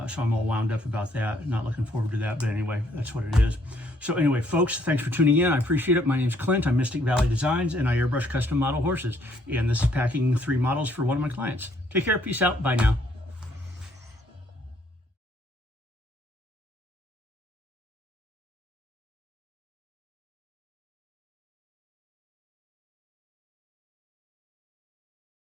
So I'm all wound up about that. Not looking forward to that, but anyway, that's what it is. So anyway, folks, thanks for tuning in. I appreciate it. My name's Clint. I'm Mystic Valley Designs, and I airbrush custom model horses. And this is packing 3 models for one of my clients. Take care. Peace out. Bye now.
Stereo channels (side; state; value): both; normal; correlation 0.67